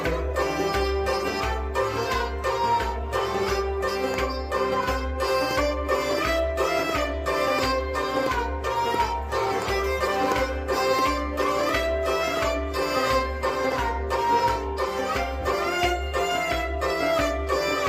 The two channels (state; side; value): identical; both; correlation 1.00